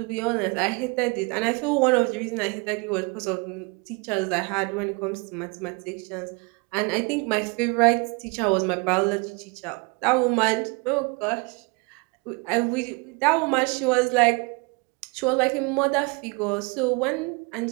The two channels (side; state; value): left; quieter; 30.0 dB